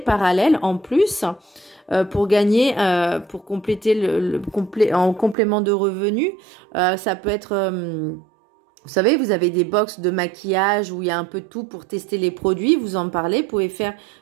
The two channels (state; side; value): drops out; left; at 5.4 s